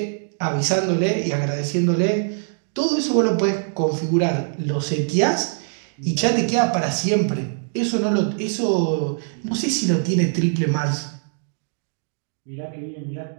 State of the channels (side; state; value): left; silent; digital silence